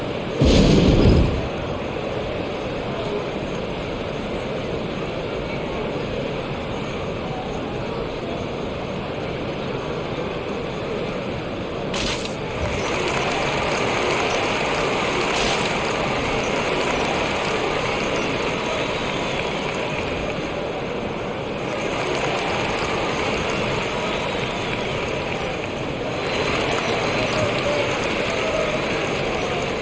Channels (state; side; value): identical; both; correlation 1.00